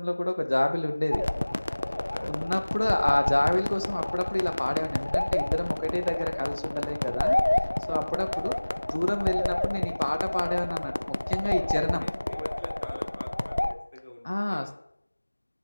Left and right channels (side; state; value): both; inverted; correlation -1.00